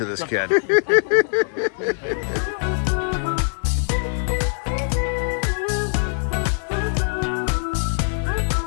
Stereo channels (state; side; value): silent; right; digital silence